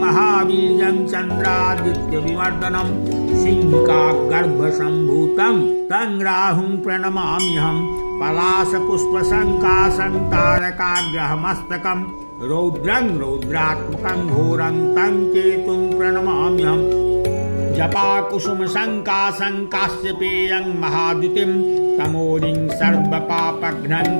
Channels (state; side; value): inverted; both; correlation -1.00